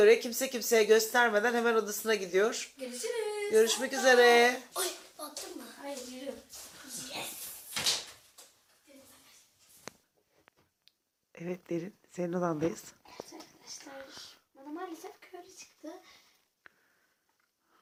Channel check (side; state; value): both; identical; correlation 1.00